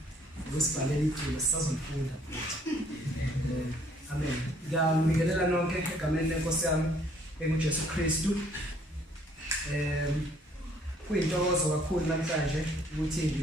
ngosibhalela iculo sisazofunda. Amen. Ngiyamikelela nonke egameni lenkosi yami enguJesu Kristu. Kuyintokozo kakhulu namhlanje ukuthi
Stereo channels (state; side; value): normal; both; correlation 0.62